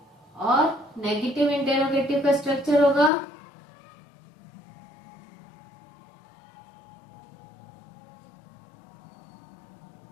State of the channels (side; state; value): right; drops out; at 3.1 s